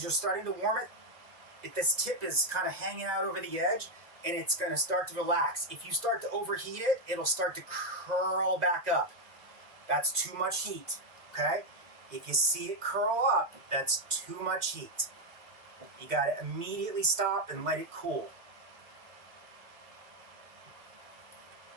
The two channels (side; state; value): left; late; 1.6 ms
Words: you're starting to warm it, if this tip is kind of hanging out over the edge, and it's going to start to relax. If you start to overheat it, it'll start to curl back up. That's too much heat, okay? If you see it curl up, that's too much heat. You got to immediately stop and let it cool.